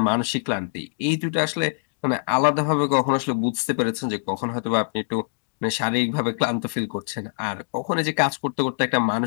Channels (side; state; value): right; silent; digital silence